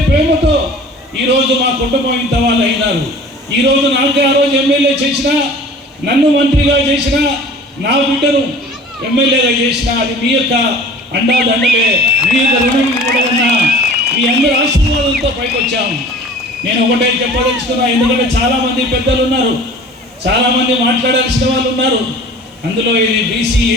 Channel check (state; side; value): normal; both; correlation 0.44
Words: ప్రేమతో ఈరోజు మా కుటుంబం ఇంత వాళ్ళు అయినారు. ఈరోజు నాకే ఆ రోజు ఎమ్మెల్యే చేసినా, నన్ను మంత్రిగా చేసినా, నా బిడ్డను ఎమ్మెల్యేగా చేసినా అది మీ యొక్క అండాదండలే, మీ యొక్క రుణం కూడా ఉన్నా. మీ అందరి ఆశీర్వాదంతో పైకి వచ్చాం. నేను ఒకటే చెప్పదలుచుకున్నా, ఎందుకంటే చాలామంది పెద్దలు ఉన్నారు, చాలామంది మాట్లాడాల్సిన వాళ్ళు ఉన్నారు. అందులో ఇది బీసీ,